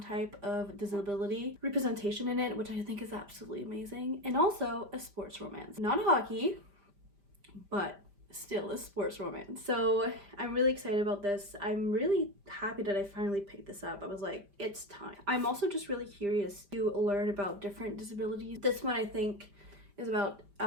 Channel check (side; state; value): left; late; 5.0 ms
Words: of disability representation in it, which I think is absolutely amazing. And also a sports romance, not hockey, but still a sports romance. So I'm really excited about this. I'm really happy that I finally picked this up. I was like, it's time. I'm also just really curious to learn about different disabilities. This one I think is about